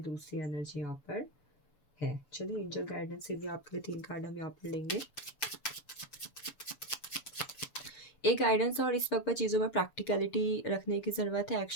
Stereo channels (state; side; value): late; right; 6.9 ms